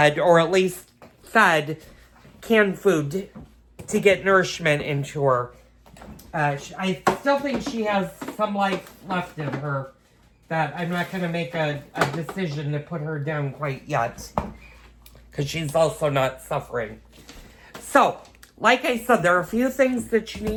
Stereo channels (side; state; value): both; identical; correlation 1.00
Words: or at least fed canned food to get nourishment into her. I still think she has some life left in her that I'm not going to make a decision to put her down quite yet because she's also not suffering. So, like I said, there are a few things that you